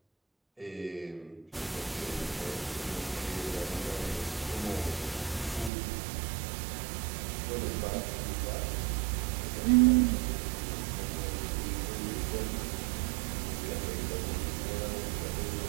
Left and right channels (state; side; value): drops out; left; at 5.7 s